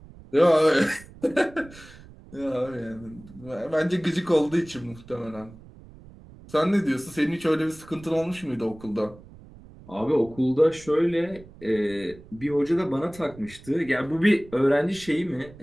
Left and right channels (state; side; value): noise; right; rumble, 20 dB below the sound